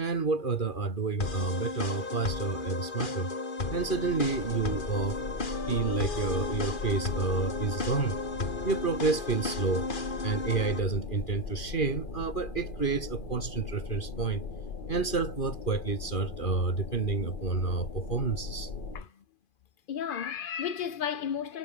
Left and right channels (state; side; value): late; right; 2.4 ms